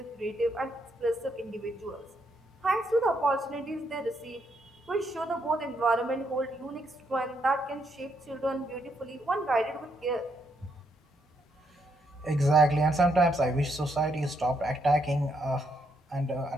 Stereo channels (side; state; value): both; normal; correlation 0.76